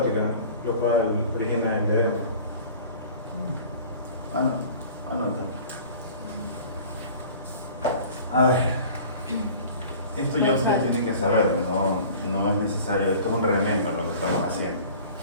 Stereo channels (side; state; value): both; inverted; correlation -0.44